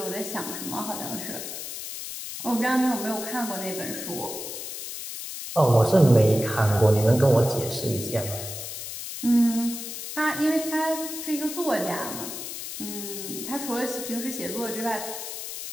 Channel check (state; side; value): noise; left; hiss, 8 dB below the sound